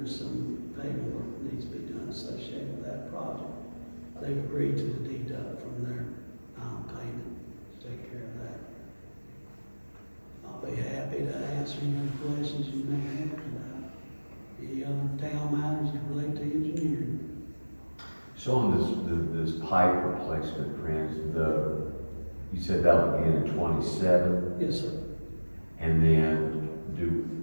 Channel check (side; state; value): both; inverted; correlation -1.00